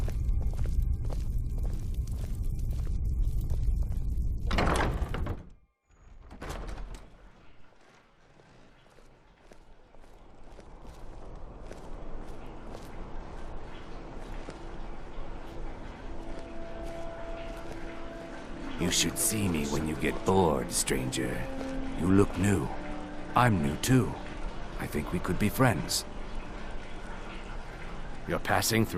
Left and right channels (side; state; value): both; identical; correlation 1.00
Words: You should see me when you get bored, stranger. You look new. I'm new too. I think we could be friends. You're passing